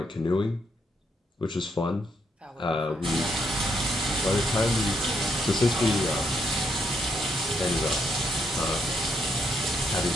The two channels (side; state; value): both; normal; correlation 0.75